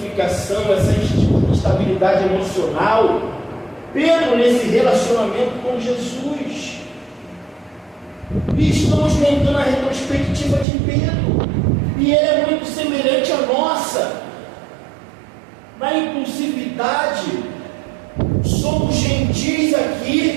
essa instabilidade emocional. Pedro, nesse relacionamento com Jesus. E estamos montando a retrospectiva de Pedro, e ele é muito semelhante à nossa, na impulsividade. Somos gentis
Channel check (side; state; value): left; drops out; at 10.7 s